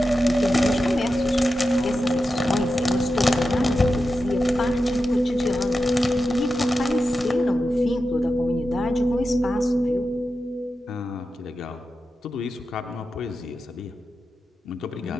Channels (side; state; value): both; normal; correlation 0.91